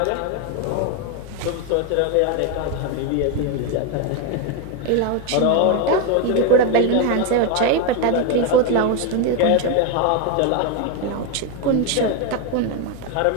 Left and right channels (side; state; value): both; different; correlation 0.02